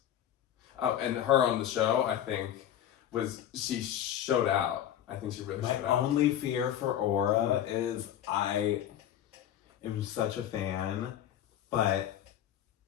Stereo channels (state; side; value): quieter; right; 11.0 dB